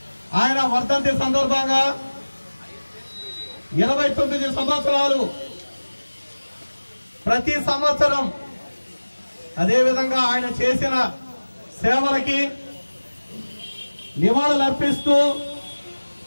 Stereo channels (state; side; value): inverted; both; correlation -1.00